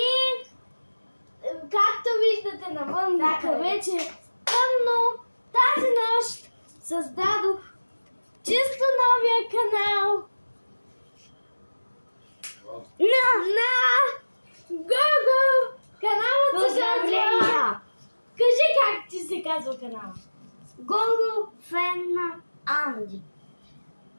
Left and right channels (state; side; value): inverted; both; correlation -1.00